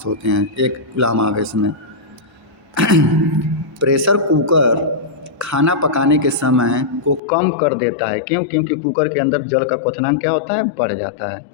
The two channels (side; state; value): right; drops out; at 7.2 s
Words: होते हैं एक कूलम आवेश में। प्रेशर कुकर खाना पकाने के समय को कम कर देता है, क्यों, क्योंकि कुकर के अंदर जल का क्वथनांक क्या होता है, बढ़ जाता है।